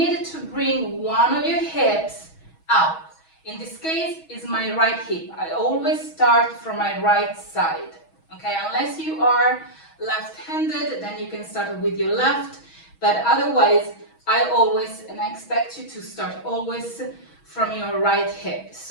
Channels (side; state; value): right; late; 6.2 ms